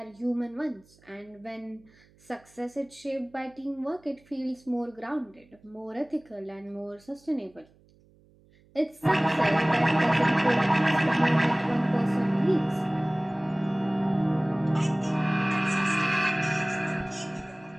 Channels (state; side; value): noise; right; hum, 30 dB below the sound